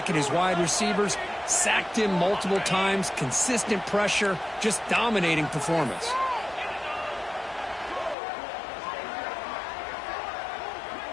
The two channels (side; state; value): right; drops out; at 8.2 s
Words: and his wide receivers. Sacked him multiple times. Consistent pressure. Just dominating performance.